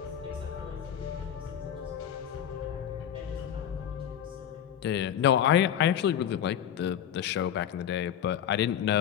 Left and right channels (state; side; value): quieter; right; 9.7 dB